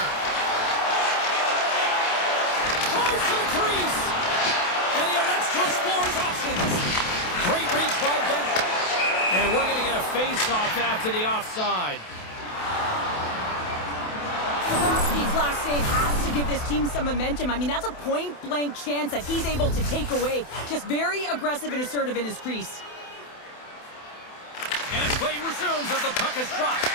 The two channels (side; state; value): right; late; 28 ms